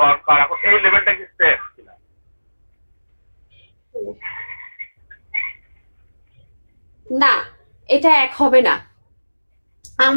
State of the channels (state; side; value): inverted; both; correlation -1.00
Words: এখন এই লেভেলটা কি সেম কিনা? না, এটা এক হবে না।